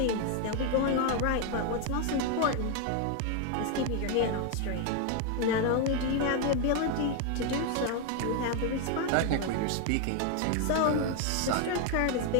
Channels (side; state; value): both; different; correlation 0.01